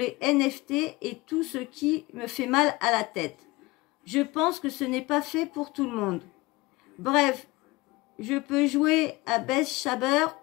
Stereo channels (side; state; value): right; quieter; 21.7 dB